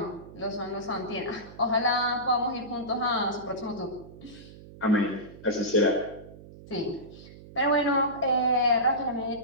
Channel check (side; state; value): right; noise; hum, 18 dB below the sound